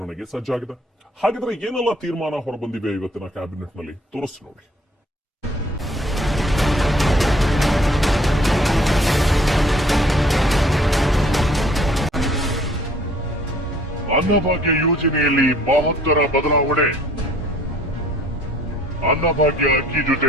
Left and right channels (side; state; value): both; normal; correlation 0.58